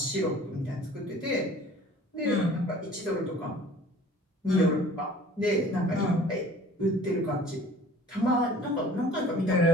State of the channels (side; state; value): both; normal; correlation 0.48